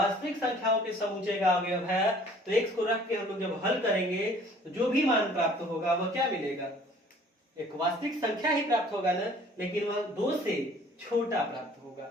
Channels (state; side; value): normal; both; correlation 0.53